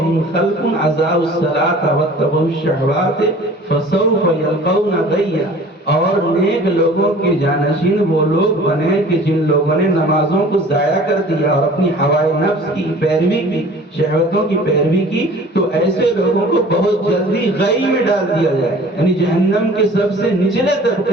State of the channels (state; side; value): normal; both; correlation 0.46